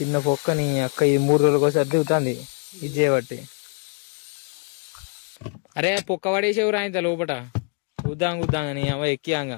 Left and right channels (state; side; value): quieter; right; 38.2 dB